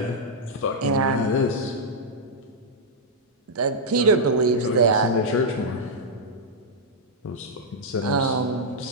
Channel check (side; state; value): both; normal; correlation -0.07